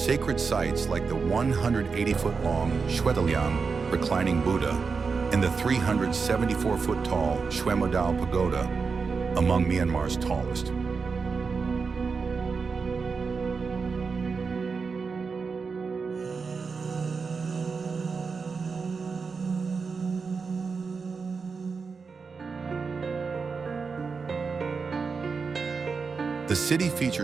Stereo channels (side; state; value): left; quieter; 5.0 dB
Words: sites like the 180-foot-long Shwetaliang reclining Buddha and the 374-foot-tall Shwemodao Pagoda, among Myanmar's tallest. The city